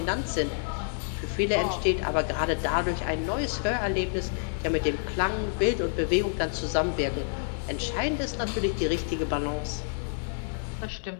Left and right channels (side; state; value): right; silent; digital silence